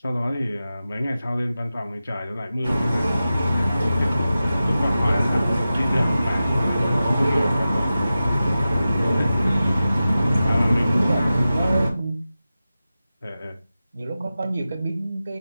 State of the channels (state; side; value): inverted; both; correlation -0.94